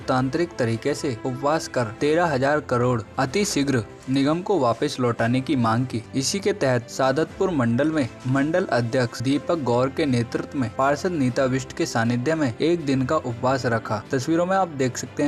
तरीके से उपवास कर 13,000 करोड़ अति शीघ्र निगम को वापस लौटाने की मांग की। इसी के तहत सादतपुर मंडल में मंडल अध्यक्ष दीपक गौर के नेतृत्व में पार्षद नीता बिष्ट के सानिध्य में एक दिन का उपवास रखा। तस्वीरों में आप देख सकते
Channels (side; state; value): both; identical; correlation 1.00